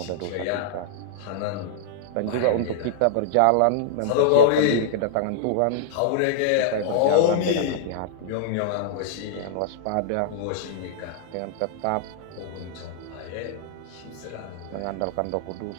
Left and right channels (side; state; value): both; different; correlation -0.01